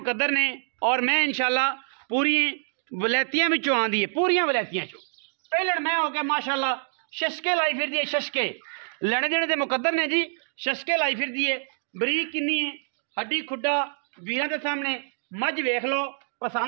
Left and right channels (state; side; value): silent; left; digital silence